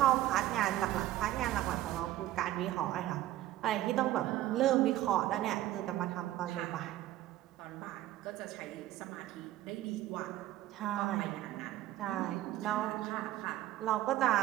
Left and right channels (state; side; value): quieter; left; 14.5 dB